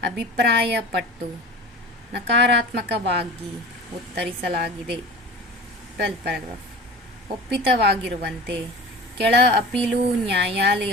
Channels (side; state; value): both; normal; correlation 0.37